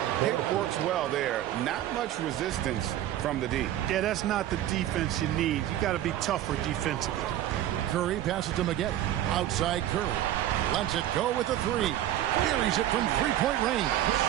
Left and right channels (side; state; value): left; quieter; 12.7 dB